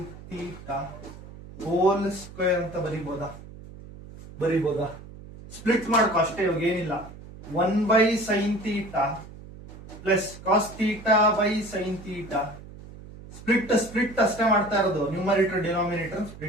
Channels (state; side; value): noise; right; hum, 16 dB below the sound